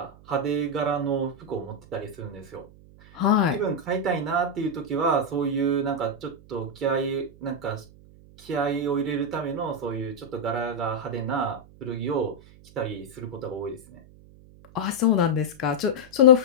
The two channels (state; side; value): noise; right; hum, 23 dB below the sound